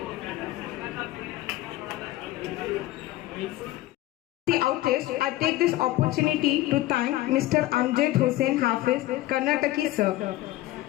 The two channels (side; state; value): right; quieter; 16.5 dB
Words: The outest, I take this opportunity to thank Mr. Amjad Hussain Hafiz, Karnataki sir.